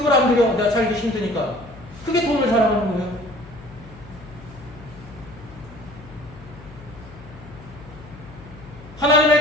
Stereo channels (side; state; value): left; noise; hum, 18 dB below the sound